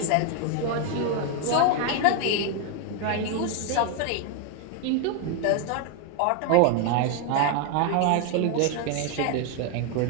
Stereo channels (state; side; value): different; both; correlation 0.01